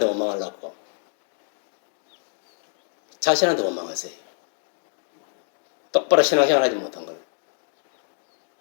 원망하려고 자신한테 원망하세요. 똑바로 신앙생활 하지 못한 걸.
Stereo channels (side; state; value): right; silent; digital silence